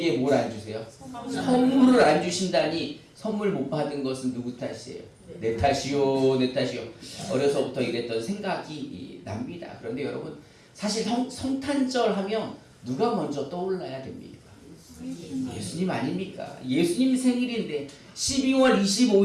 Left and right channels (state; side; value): identical; both; correlation 1.00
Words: 뭘 안 주세요? 선물을 안 주신다니. 선물 못 받은 것은 누구 탓이에요? 내 탓이요, 내 탓이요. 어려서부터 이랬던 생각이 납니다. 그런데 여러분, 사실 성탄절 하면 누가 먼저 떠올라야 됩니까? 예수님 아닙니까? 예수님 생일인데 12월